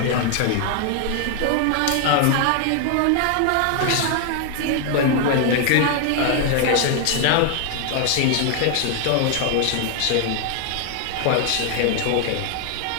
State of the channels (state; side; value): different; both; correlation 0.00